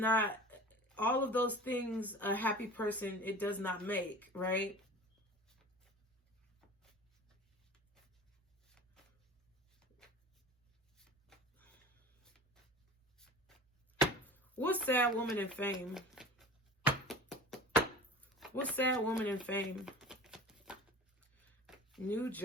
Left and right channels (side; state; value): both; normal; correlation 0.37